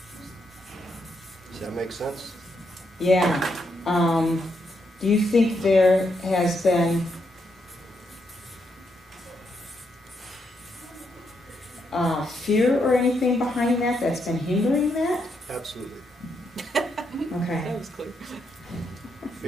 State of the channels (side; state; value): both; normal; correlation 0.79